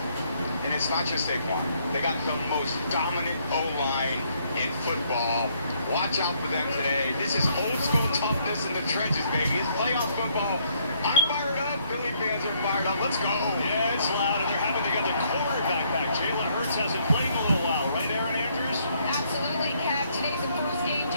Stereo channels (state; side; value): inverted; both; correlation -0.69